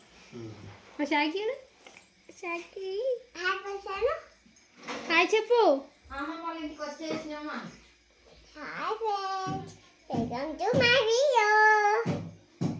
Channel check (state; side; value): identical; both; correlation 1.00